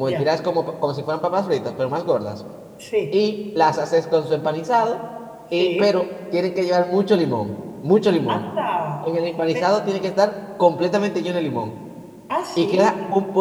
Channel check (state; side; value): identical; both; correlation 1.00